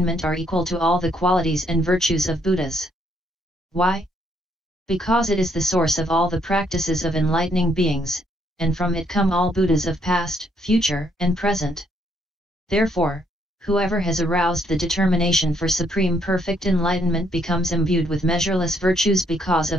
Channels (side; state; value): both; normal; correlation 0.71